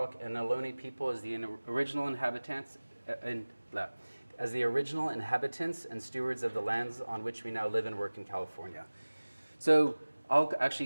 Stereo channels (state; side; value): inverted; both; correlation -1.00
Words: and Ohlone people as the original inhabitants and stewards of the lands on which we now live and work in California. So I'll